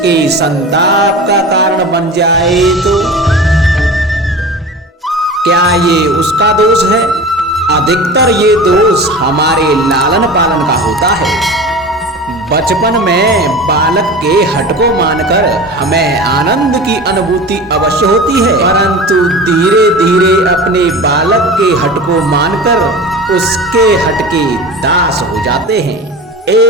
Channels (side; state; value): both; normal; correlation 0.33